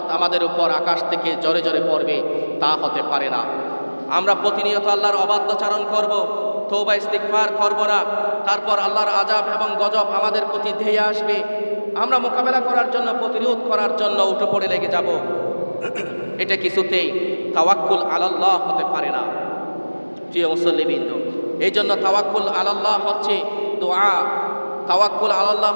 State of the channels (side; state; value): both; inverted; correlation -1.00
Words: আমাদের উপর আকাশ থেকে জোরে জোরে পড়বে, তা হতে পারে না। আমরা প্রতিনিয়ত আল্লাহর অবাধ্যচারণ করব, তওবা ইস্তিগফার করব না, তারপর আল্লাহর আযাব এবং গজব আমাদের প্রতি ধেয়ে আসবে। আমরা মোকাবেলা করার জন্য, প্রতিরোধ করার জন্য উঠে পড়ে লেগে যাব। এটা কিছুতেই তাওয়াক্কুল আলাল্লাহ হতে পারে না। প্রিয় মুসল্লিবৃন্দ, এই জন্য তাওয়াক্কুল আলাল্লাহ হচ্ছে দোয়া, তাওয়াক্কুল আলাল্লাহ